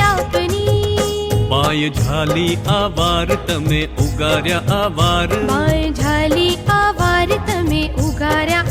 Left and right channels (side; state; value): both; identical; correlation 1.00